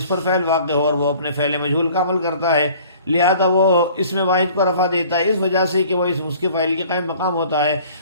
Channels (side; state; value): both; inverted; correlation -0.50